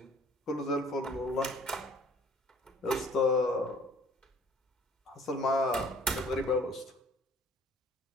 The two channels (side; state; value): both; normal; correlation 0.55